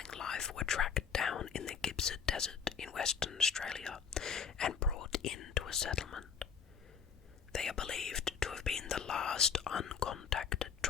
life were tracked down in the Gippsland Desert in Western Australia and brought into a settlement. They are believed to have been the last uncontacted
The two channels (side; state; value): right; quieter; 6.7 dB